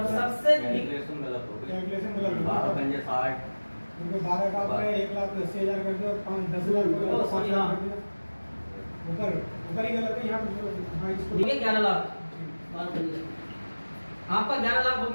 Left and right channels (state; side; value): inverted; both; correlation -1.00